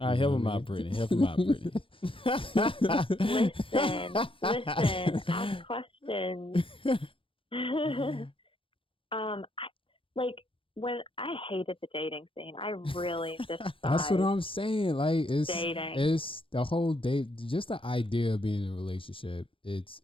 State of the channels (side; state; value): right; late; 0.25 ms